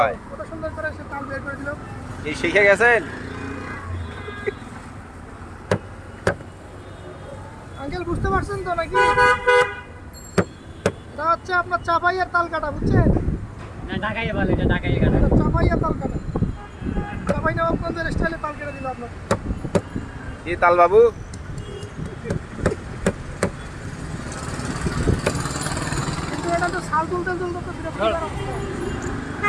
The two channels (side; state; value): both; identical; correlation 1.00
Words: হয়। কত সুন্দর করে সে তাল বের করে দিল। কি শিখে গেছেন? আঙ্কেল বুঝতে পারছেন তো নাকি? এটা হচ্ছে আপনার চাপাইয়ের তাল কাটা, বুঝছেন? ঢাকাইয়ে বলে, এটা ঢাকাইয়ে কাটা। এটা চাপাইয়ের তাল কাটা। চাপাই নবাবগঞ্জের স্টাইলে তাল কেটে দিল আপনার। কি তাল বাবু? কিন্তু এটা তো শাল তুলতে তুলতে তো বিরক্ত করার অবস্থা।